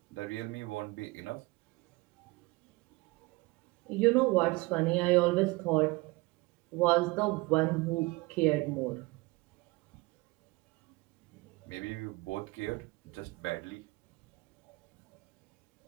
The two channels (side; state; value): left; quieter; 23.7 dB